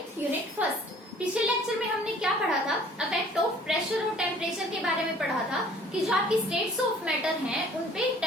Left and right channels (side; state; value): both; normal; correlation 0.53